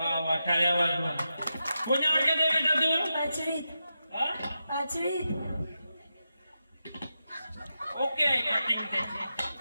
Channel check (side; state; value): both; inverted; correlation -0.89